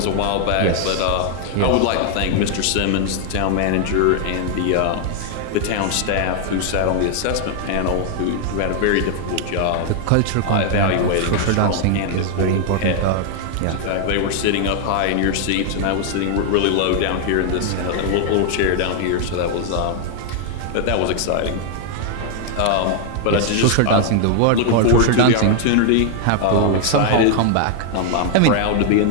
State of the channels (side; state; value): both; different; correlation 0.00